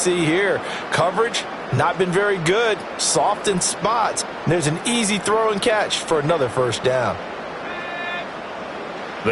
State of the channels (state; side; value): identical; both; correlation 1.00